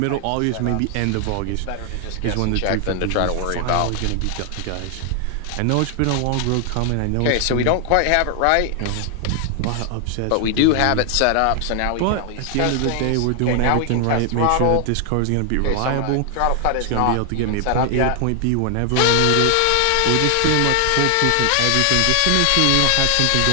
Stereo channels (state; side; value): different; both; correlation 0.00